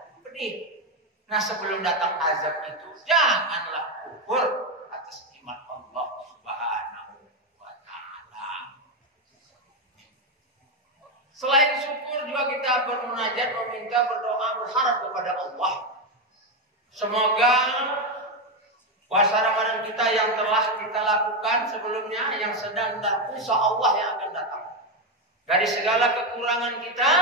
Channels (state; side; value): normal; both; correlation 0.09